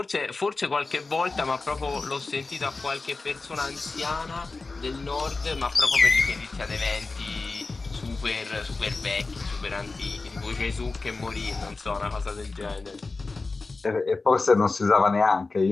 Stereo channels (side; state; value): right; quieter; 3.7 dB